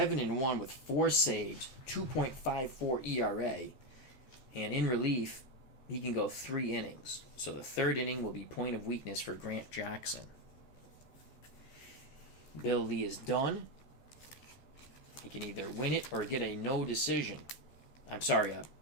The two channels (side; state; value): right; late; 13 ms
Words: with 4 saves, 2.54 ERA. And in relief, he can go 3 innings. So the 3rd inning will be point of weakness for Grant Jackson. Bill Lee is done. He can either win it or get a no decision. I'm sorry,